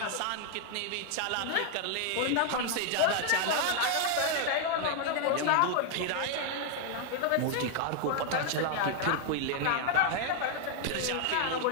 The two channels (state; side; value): different; both; correlation 0.00